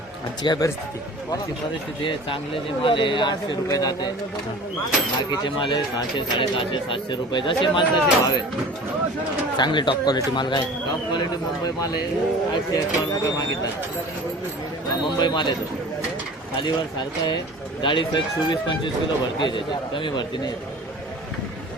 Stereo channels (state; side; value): normal; both; correlation 0.41